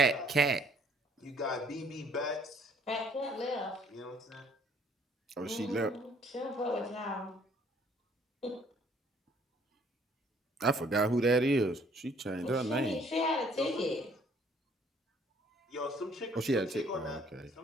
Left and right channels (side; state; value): both; normal; correlation 0.61